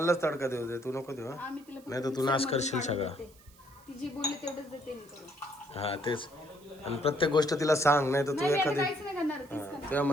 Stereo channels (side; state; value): right; noise; hiss, 27 dB below the sound